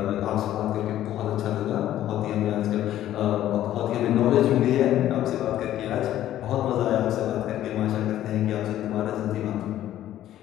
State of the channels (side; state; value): right; quieter; 12.7 dB